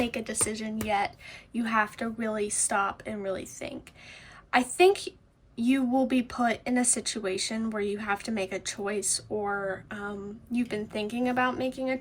a decision yet. You have to really stop and really think. I think you will be put in a situation where you have to make a choice, or you've been thinking about making a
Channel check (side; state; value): both; identical; correlation 1.00